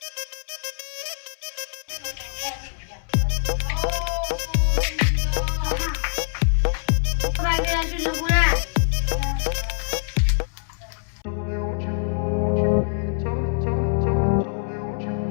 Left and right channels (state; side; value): silent; right; 62 dB below the other